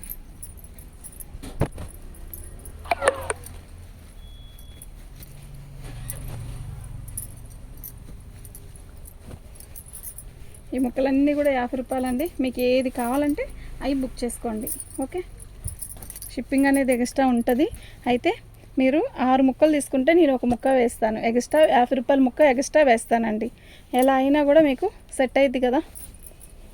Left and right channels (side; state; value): both; identical; correlation 1.00